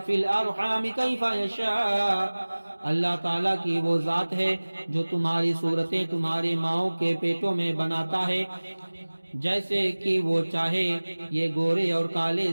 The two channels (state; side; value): inverted; both; correlation -1.00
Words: الارحام کیف یشاء، اللہ تعالیٰ کی وہ ذات ہے جو تمہاری صورتیں تمہاری ماؤں کے پیٹوں میں بناتا ہے جیسے کہ وہ چاہے۔ یہ گورے اور کالے،